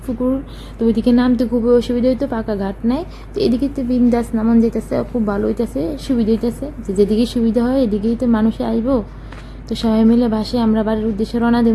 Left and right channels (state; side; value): identical; both; correlation 1.00